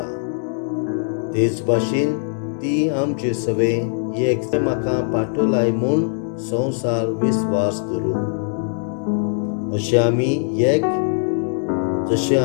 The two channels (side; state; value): right; silent; digital silence